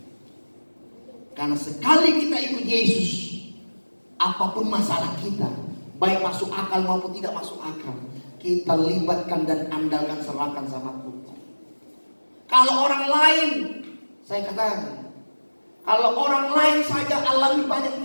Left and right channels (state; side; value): inverted; both; correlation -1.00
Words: Karena sekali kita ikut Yesus, apapun masalah kita, baik masuk akal maupun tidak masuk akal, kita libatkan dan andalkan, serahkan sama Tuhan. Kalau orang lain, saya katakan, kalau orang lain saja alami banyak